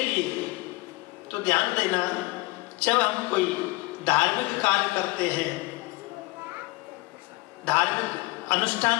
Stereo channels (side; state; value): right; quieter; 22.3 dB